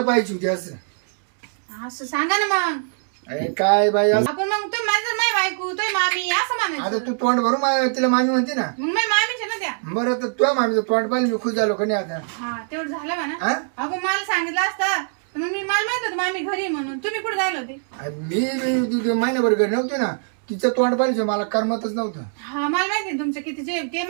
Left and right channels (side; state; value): left; silent; digital silence